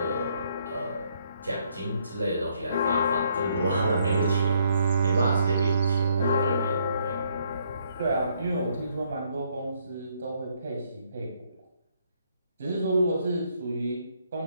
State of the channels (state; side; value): inverted; both; correlation -0.69